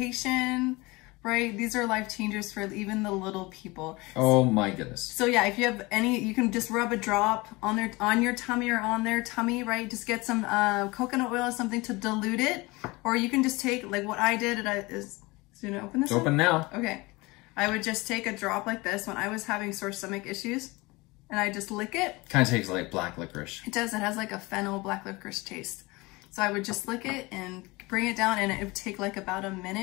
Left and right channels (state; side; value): quieter; right; 23.3 dB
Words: Right? These are life changers for even the little people. Oh my goodness. So yeah, if you have any, you can just rub a drop on your tummy or on their tummy, right? Just get some coconut oil or something to dilute it. Or you can just take, like what I did, is you gonna open this? It's open now. Okay. I would just take a drop like this when I was having sore stomach issues, and I just lick it. Kind of tastes like black licorice. It does. It has like a fennel black licorice taste. So I would just lick it and bring it down, and it would take like about a